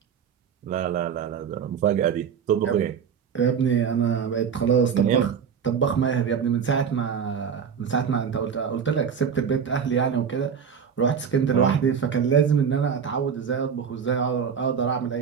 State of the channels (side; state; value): left; quieter; 7.1 dB